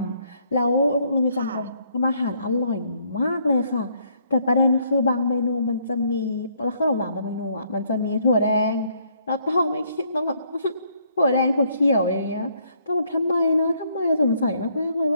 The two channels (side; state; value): both; inverted; correlation -0.68